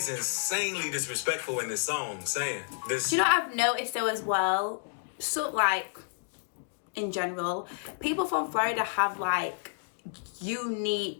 insanely disrespectful in this song, saying this. Do you know what I've noticed though as well? So like, in general, people from Florida have like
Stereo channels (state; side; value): silent; right; digital silence